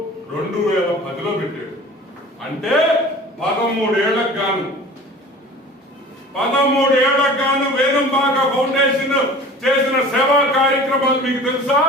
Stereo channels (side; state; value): both; normal; correlation 0.42